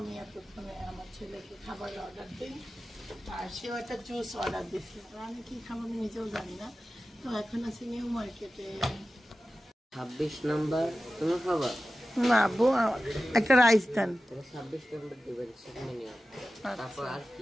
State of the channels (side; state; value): both; normal; correlation 0.95